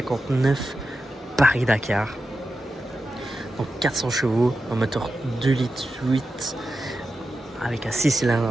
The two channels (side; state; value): both; normal; correlation 0.91